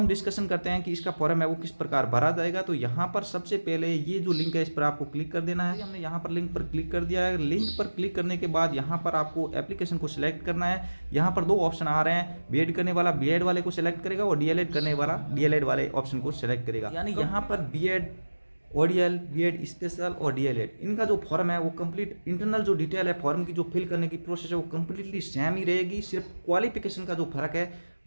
डिस्कशन करते हैं कि इसका फॉर्म है वो किस प्रकार भरा जाएगा। तो यहाँ पर सबसे पहले ये जो लिंक है इस पर आपको क्लिक कर देना है। हमने यहाँ पर लिंक पर क्लिक कर दिया है। लिंक पर क्लिक करने के बाद यहाँ पर आपको एप्लीकेशन को सिलेक्ट करना है। यहाँ पर दो ऑप्शन आ रहे हैं, बीएड करने वाला बीएड वाले को सिलेक्ट करेगा और डीएलएड करने वाला डीएलएड वाले ऑप्शन को सिलेक्ट करेगा। यानी यहाँ पर बीएड ओडीएल, बीएड स्पेशल और डीएलएड इनका जो फॉर्म है वो कंप्लीट इंटरनल जो डिटेल है फॉर्म की जो फिल करने की प्रोसेस है वो कंप्लीटली सेम ही रहेगी। सिर्फ क्वालिफिकेशन का जो फर्क है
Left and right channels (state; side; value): inverted; both; correlation -1.00